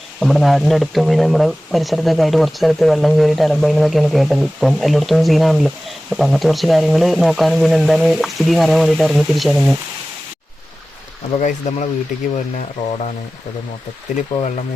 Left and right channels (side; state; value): both; normal; correlation 0.96